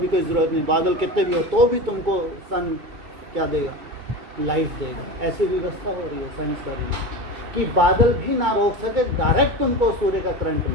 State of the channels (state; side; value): late; left; 2.3 ms